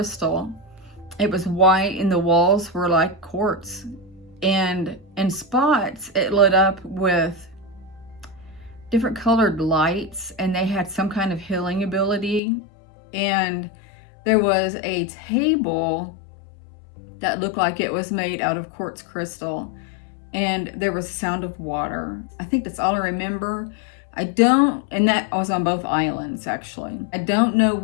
It was white and the walls were like quartz, and in spots it lit up with different colored lights, and they had some kind of healing ability. And there was a table that looked like it was made out of quartz crystal, and there was sound of water. I think that's all I remember. And that was on both islands actually. I don't know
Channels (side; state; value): right; drops out; at 12.4 s